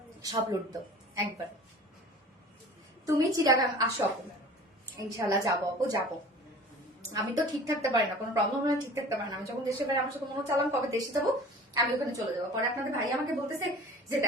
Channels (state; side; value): normal; both; correlation 0.43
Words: সব লুটতো একবার। তুমি চিটাগাং আসো আপু, ইনশাল্লাহ যাবো আপু যাবো। আমি তো ঠিক থাকতে পারি না, কোনো প্রবলেম হলে ঠিক থাকতে পারি না। আমি যখন দেশে পারি আমার সাথে মনে চালাম কবে দেশে যাবো, আমি ওখানে চলে যাবো। পরে আপনাদের ভাই আমাকে বলতেছে যে